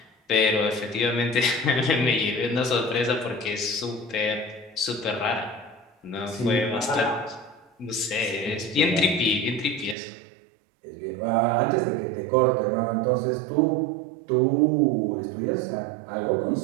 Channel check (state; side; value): drops out; left; at 10.0 s